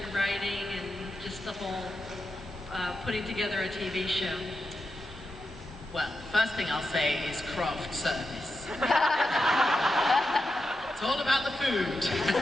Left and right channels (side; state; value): both; normal; correlation 0.88